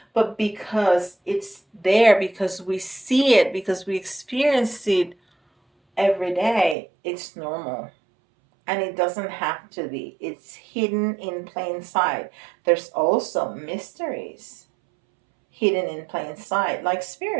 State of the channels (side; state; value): left; drops out; at 6.8 s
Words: but because it's there, because we see it, because we experience it every day, it's normal. And it doesn't have to be. It's hidden in plain sight. There's also mysteries hidden in plain sight, like